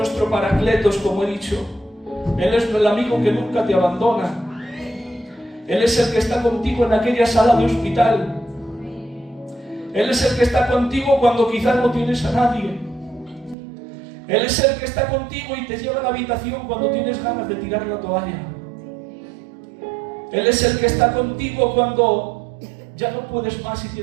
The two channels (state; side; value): drops out; left; at 13.6 s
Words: Paracletos, como he dicho. Él es el amigo que nunca te abandona. Él es el que está contigo en aquella sala de hospital. Él es el que está contigo cuando quizás no tienes a nadie. Él es el que está contigo y te lleva a la habitación cuando tienes ganas de tirar la toalla. Él es el que está contigo cuando ya no puedes más y